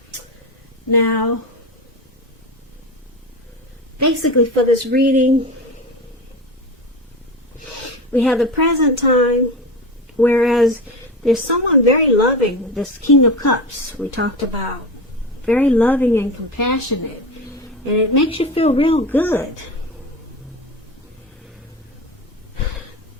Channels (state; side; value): normal; both; correlation 0.25